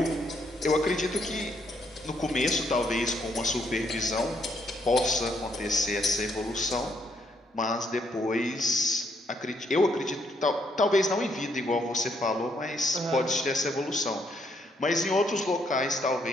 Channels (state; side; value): normal; both; correlation 0.72